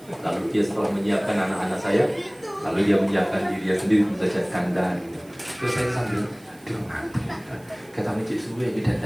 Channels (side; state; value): right; noise; hiss, 27 dB below the sound